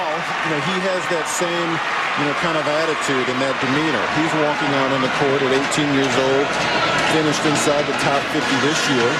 you know, he has that same, you know, kind of attitude and that demeanor. He's walking out on the court at 18 years old, finished inside the top 50 this year.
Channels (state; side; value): identical; both; correlation 1.00